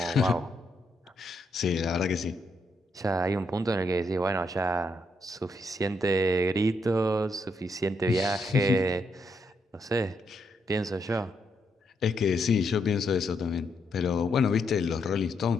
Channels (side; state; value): both; normal; correlation 0.78